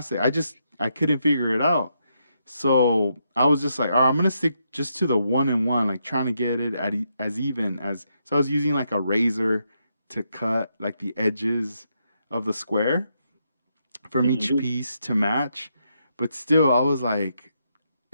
I couldn't figure it out. So I was just like, all right, I'm gonna stick just to the one and one, like trying to get it at as even as. So I was using like a razor to cut like the edges of the square from each Hmm. piece to match. But still, I was like,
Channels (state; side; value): inverted; both; correlation -0.80